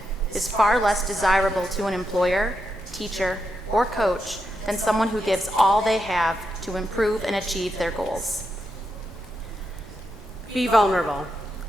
is far less desirable to an employer, teacher, or coach than someone who gives all they have to improve and achieve their goals. Be vulnerable.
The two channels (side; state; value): both; normal; correlation 0.84